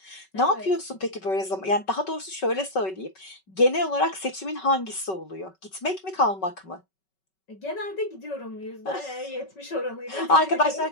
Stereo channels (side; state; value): right; late; 5.3 ms